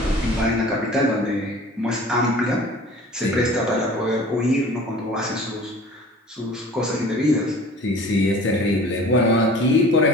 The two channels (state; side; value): normal; both; correlation 0.44